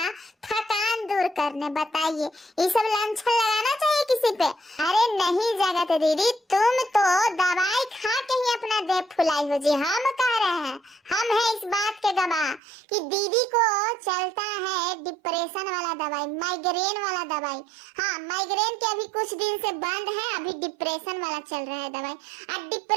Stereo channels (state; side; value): drops out; left; at 12.6 s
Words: थकान दूर करने। बताइए, ये सब लांछन लगाना चाहिए किसी पे? अरे नहीं जगत दीदी, तुम तो दवाई खा के ही अपना देह फुलाई हो जी। हम कह रहे हैं, हम है इस बात के गवाह कि दीदी को चलता है डिप्रेशन वाला दवाई, माइग्रेन वाला दवाई। हाँ, माइग्रेन के अभी कुछ दिन से बंद है, अभी डिप्रेशन वाला चल रहा है दवाई। और